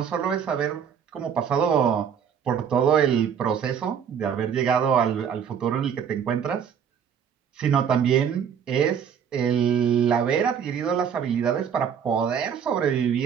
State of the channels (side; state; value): left; quieter; 7.8 dB